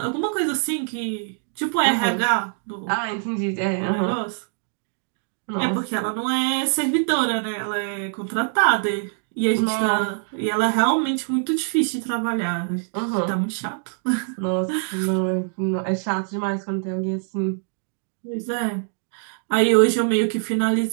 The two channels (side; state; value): left; silent; digital silence